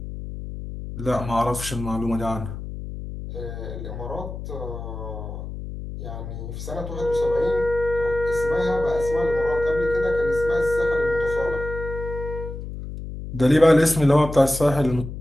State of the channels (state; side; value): noise; left; hum, 8 dB below the sound